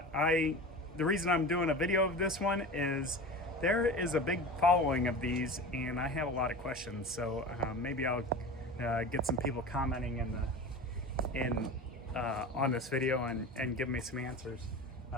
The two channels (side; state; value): both; normal; correlation 0.32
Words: The reason I'm doing a video of this one is there is a big following of these, and I have a lot of questions. So maybe I'll get some people commenting on this video and give me some answers.